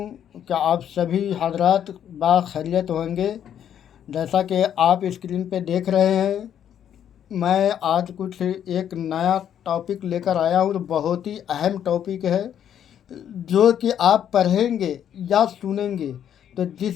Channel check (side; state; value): right; quieter; 9.6 dB